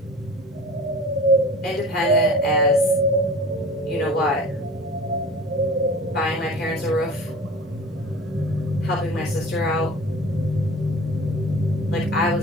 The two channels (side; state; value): both; normal; correlation 0.39